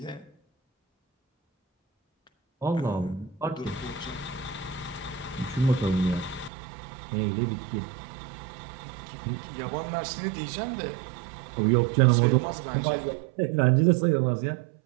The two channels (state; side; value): drops out; left; at 6.5 s